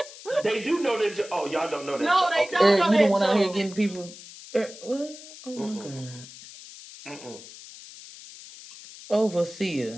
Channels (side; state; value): left; noise; hiss, 16 dB below the sound